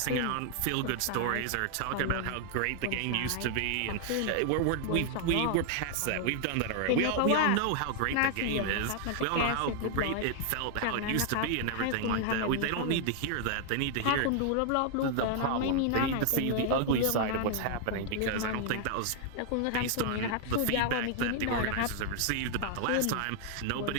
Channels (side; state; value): both; different; correlation 0.00